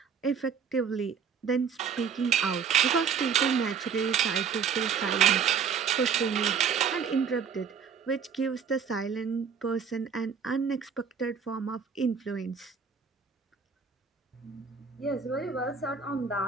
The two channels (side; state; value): left; quieter; 6.5 dB